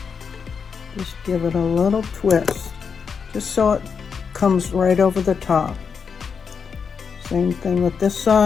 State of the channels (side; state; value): right; quieter; 6.1 dB